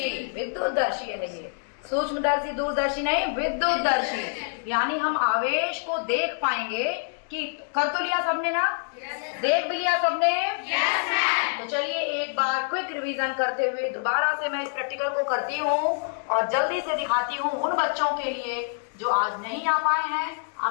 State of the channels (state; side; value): silent; right; digital silence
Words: विद्युतदर्शी है ये, सूक्ष्मदर्शी दूरदर्शी नहीं, विद्युतदर्शी। यानी हम आवेश को देख पाएंगे कि कर तो लिया सबने ना? देख भी लिया सबने? तो चलिए एक बार क्विक रिवीजन करते हुए दोबारा से मैं इस प्रैक्टिकल को करती हूँ और जल्दी से दिखाती हूँ उन बच्चों के लिए जो आज नहीं आ पाए हैं।